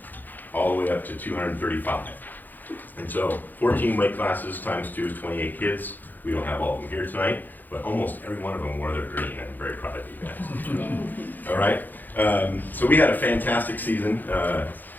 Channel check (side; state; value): right; late; 0.086 ms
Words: all the way up to 235. And so 14 weight classes times 2 is 28 kids. We don't have all of them here tonight, but almost every one of them wore their green, and I'm very proud of you guys. All right, so we had a fantastic season.